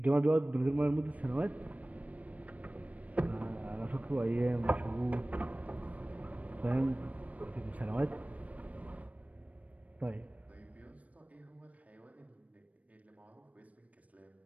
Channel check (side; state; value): left; late; 0.068 ms